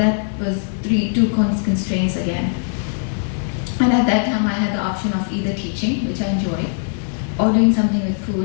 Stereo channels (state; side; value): silent; right; 61 dB below the other